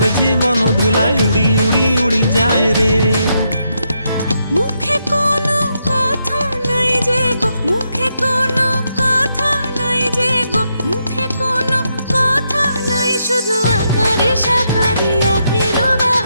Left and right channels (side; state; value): both; inverted; correlation -0.80